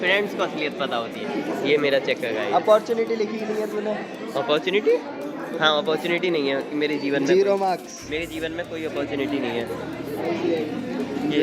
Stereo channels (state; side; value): identical; both; correlation 1.00